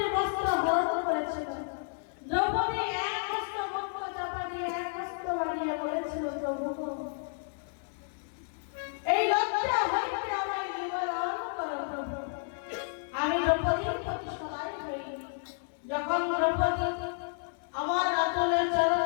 বস্ত্র হরণ করেছিল দ্রৌপদী এক হস্ত বস্ত্র চাপা দিয়ে এক হস্ত বাড়িয়ে বলেছিল প্রভু এই লজ্জা হইতে আমায় নিবারণ করো প্রভু আমি দ্রৌপদীর প্রতি সদাই হই যখন দ্রৌপদী আমার আঁচলের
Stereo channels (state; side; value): silent; right; digital silence